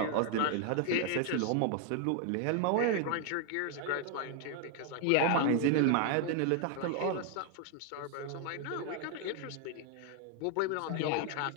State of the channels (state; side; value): different; both; correlation 0.00